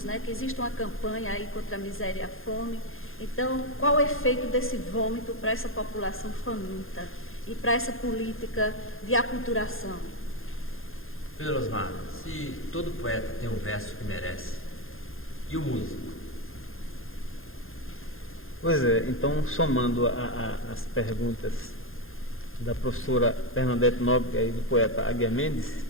né? Que existe uma campanha aí contra a miséria e a fome. Então, qual o efeito desse vômito para essa população faminta e para essa política de aculturação? Pedro Osmar, se todo poeta tem um verso que merece, e o músico? Pois é, então, somando as perguntas da professora Bernadette Nóbrega e do poeta Águia Mendes,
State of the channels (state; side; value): late; right; 0.60 ms